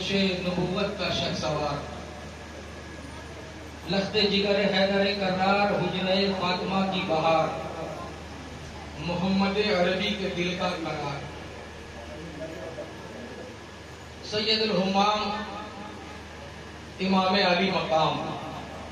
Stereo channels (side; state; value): both; identical; correlation 1.00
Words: نبوت کا شہسوار، لخت جگر حیدر کرار، حجرہ فاطمہ کی بہار، محمد عربی کے دل کا قرار، سید الہمام امام علی مقام،